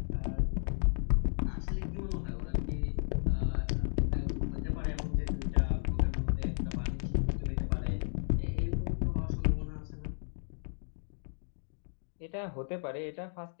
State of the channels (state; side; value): silent; right; digital silence